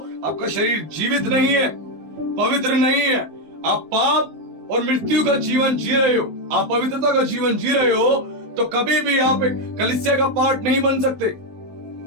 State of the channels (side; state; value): left; late; 19 ms